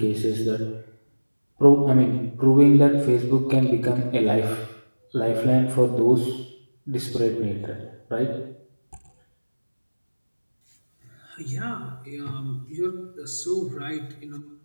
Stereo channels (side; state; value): both; inverted; correlation -1.00